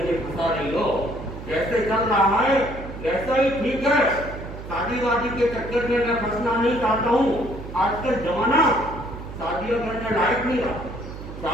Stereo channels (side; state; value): right; noise; hum, 11 dB below the sound